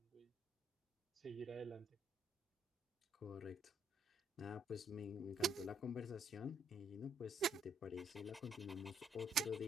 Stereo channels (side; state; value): both; normal; correlation 0.69